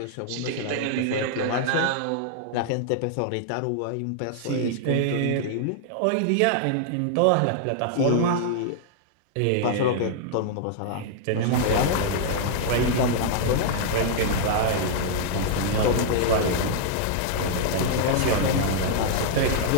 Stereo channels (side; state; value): both; different; correlation -0.01